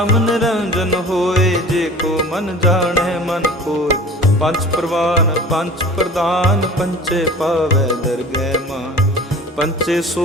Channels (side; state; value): both; normal; correlation 0.41